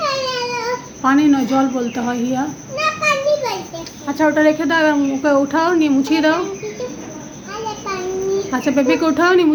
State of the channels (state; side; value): identical; both; correlation 1.00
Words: পানি নয়, জল বলতে হয় হিয়া। আচ্ছা ওটা রেখে দাও, এবার ওকে উঠাও, নিয়ে মুছিয়ে দাও। আচ্ছা বেবিকে উঠাও, নিয়ে